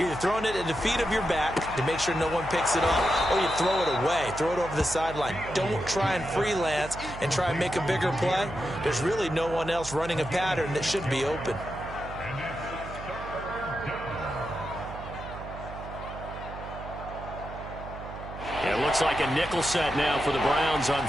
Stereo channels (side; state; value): right; noise; hum, 11 dB below the sound